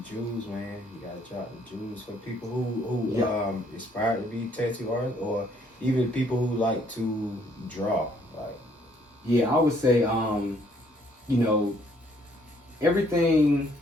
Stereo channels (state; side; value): normal; both; correlation 0.66